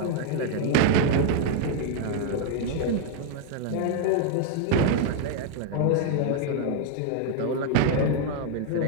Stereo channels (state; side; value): different; both; correlation 0.00